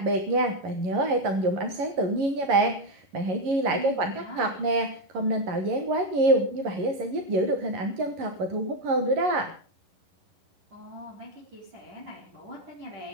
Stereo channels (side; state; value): left; late; 11 ms